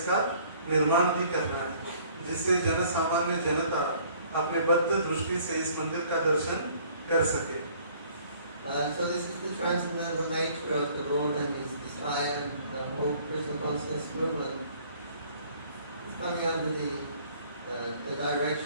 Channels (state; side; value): inverted; both; correlation -0.57